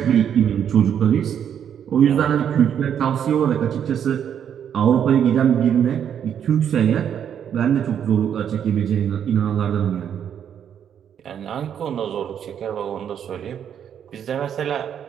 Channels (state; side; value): quieter; left; 8.8 dB